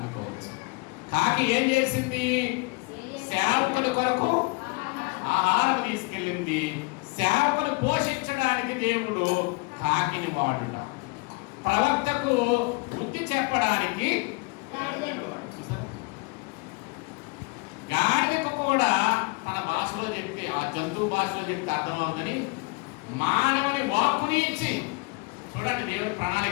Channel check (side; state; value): right; quieter; 28.2 dB